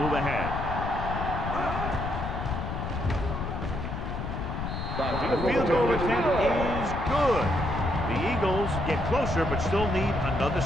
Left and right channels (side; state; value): left; noise; rumble, 4 dB below the sound